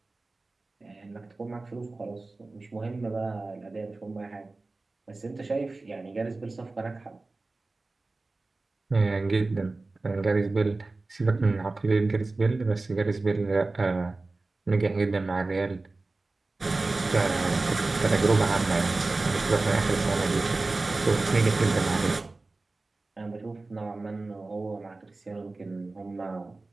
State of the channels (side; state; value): left; quieter; 3.3 dB